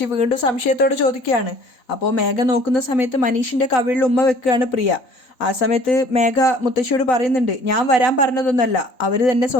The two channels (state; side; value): late; right; 4.0 ms